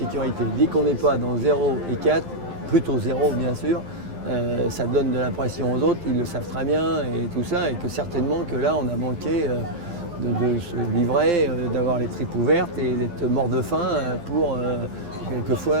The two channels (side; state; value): left; late; 12 ms